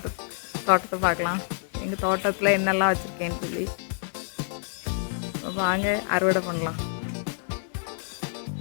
பார்க்கலாம். எங்கள் தோட்டத்தில் என்னெல்லாம் வச்சுருக்கேன்னு சொல்லி வாங்க அறுவடை பண்ணலாம்.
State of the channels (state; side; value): silent; right; digital silence